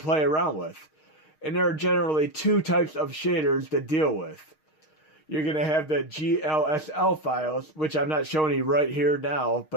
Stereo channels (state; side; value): late; right; 6.4 ms